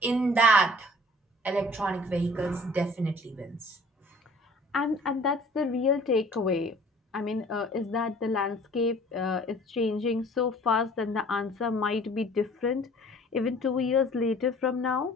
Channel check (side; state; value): both; normal; correlation 0.51